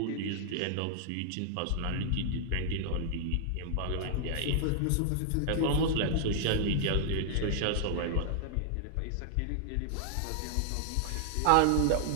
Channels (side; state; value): both; different; correlation 0.00